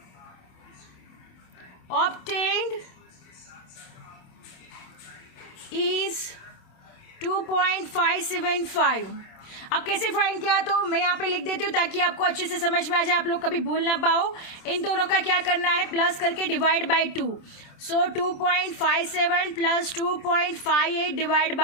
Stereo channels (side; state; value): right; late; 27 ms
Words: obtained is 2.575। अब कैसे फाइंड किया, तो मैं यहाँ पे लिख देती हूँ ताकि आपको अच्छे से समझ में आ जाए, आप लोग कभी भूल ना पाओ। इन दोनों का क्या करना है, प्लस करके divide by 2। So 2.57 plus 2.58 divide